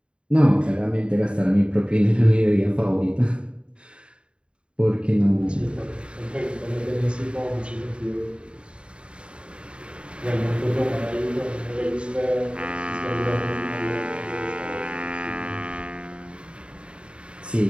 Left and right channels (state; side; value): late; left; 0.054 ms